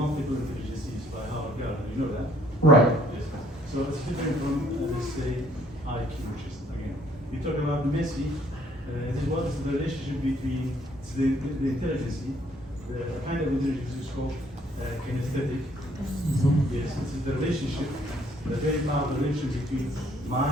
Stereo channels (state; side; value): normal; both; correlation 0.64